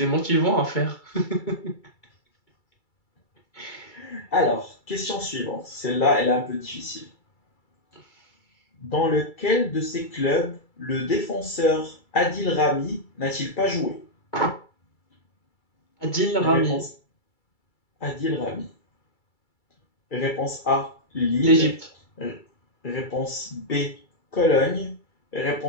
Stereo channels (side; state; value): right; late; 2.2 ms